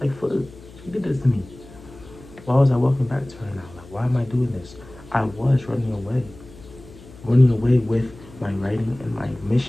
Like, for she did this to me. Why was I walking back to her now? Like, why am I doing this? I was running away. Running away with my writing and my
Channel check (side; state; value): left; noise; hum, 20 dB below the sound